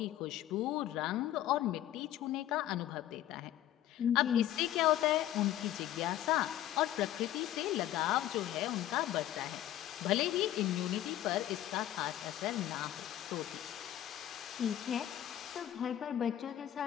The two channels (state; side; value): quieter; right; 12.7 dB